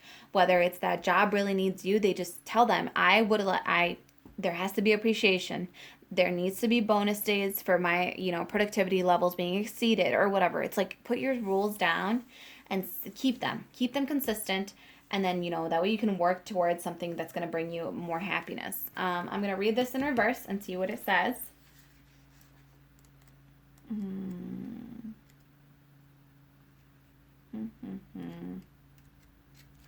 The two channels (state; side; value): identical; both; correlation 1.00